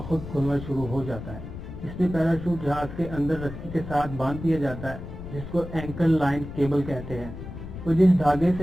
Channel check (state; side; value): noise; left; rumble, 10 dB below the sound